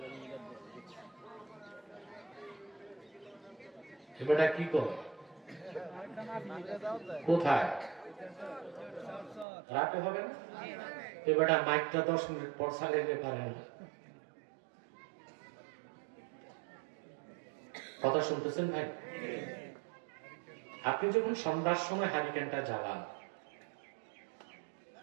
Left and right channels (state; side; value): drops out; left; at 9.5 s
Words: এবারটা কি করে কোথায় রাতে হবে না? এবারটা মাইকটা 10 মিনিট পর চালাইতে পারে না। কথা শুনতেছেন ভাই? আপনি যখন সন্ধ্যার সময় হারিকেনটা জ্বালান,